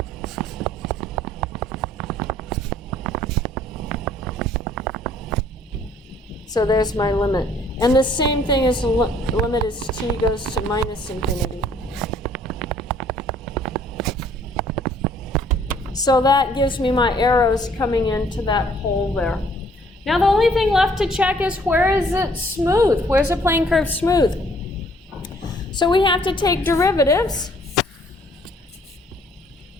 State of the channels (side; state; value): both; normal; correlation 0.60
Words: So there's my limit. And the same thing as the limit as t goes to minus infinity. So that gives me my arrows coming into that hole there. Now the only thing left to check is where is it smooth? Where's the plane curve smooth? So we have to take derivatives.